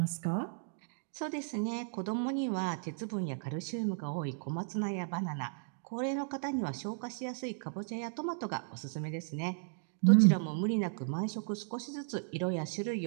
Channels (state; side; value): silent; left; digital silence